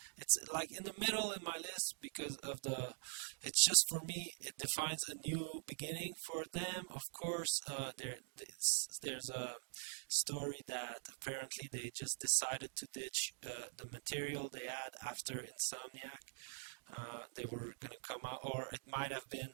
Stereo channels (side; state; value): left; silent; digital silence